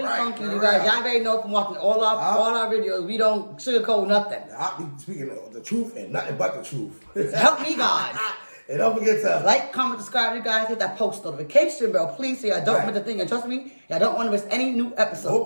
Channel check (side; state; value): both; inverted; correlation -1.00